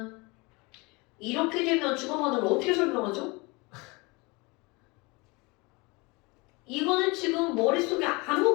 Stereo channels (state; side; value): quieter; right; 26.4 dB